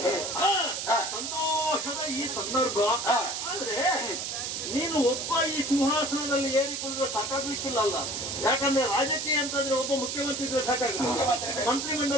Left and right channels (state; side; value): noise; right; hiss, 4 dB below the sound